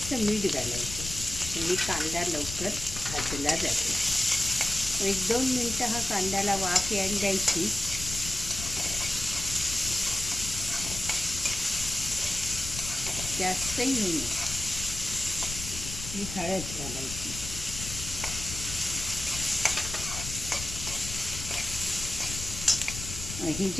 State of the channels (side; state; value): left; noise; rumble, 8 dB below the sound